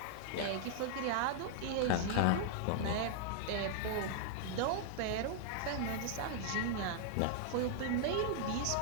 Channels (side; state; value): both; different; correlation -0.01